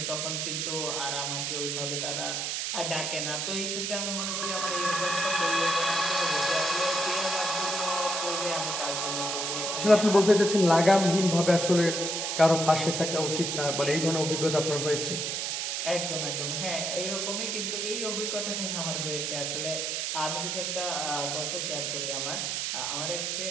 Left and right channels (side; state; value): right; noise; hiss, 1 dB below the sound